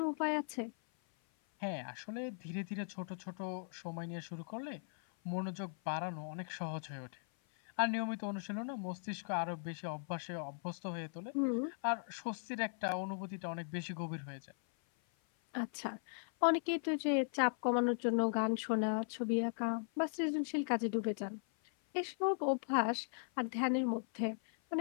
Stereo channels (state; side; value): silent; right; 52 dB below the other